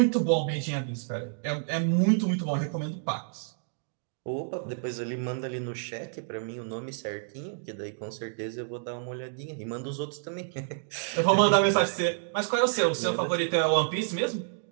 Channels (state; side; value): silent; left; digital silence